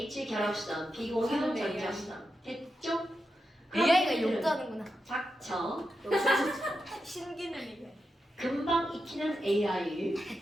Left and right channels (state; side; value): normal; both; correlation 0.88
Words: 결합선, 비공유 전자선. 됐죠? AI가 욕도 하는구나. 닥쳐. 신기능이네. 금방 익히는 AI.